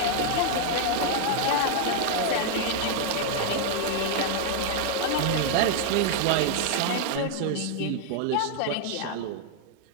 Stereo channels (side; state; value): both; different; correlation 0.00